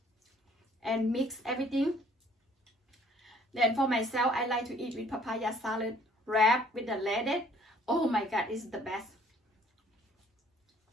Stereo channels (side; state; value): both; normal; correlation 0.59